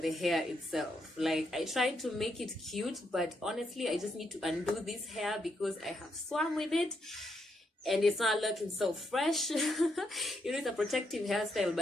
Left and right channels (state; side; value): normal; both; correlation 0.79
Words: the hair itself. Like, I tried to make it cute, but honestly, I just need to undo this hair because I have swam with it and it's not looking so fresh. You know, it's a protective hairstyle,